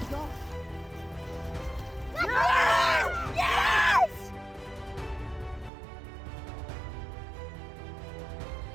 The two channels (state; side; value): drops out; left; at 5.7 s